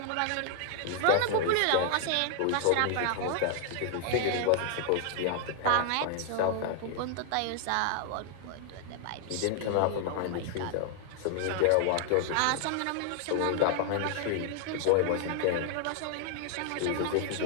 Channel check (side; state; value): both; different; correlation 0.00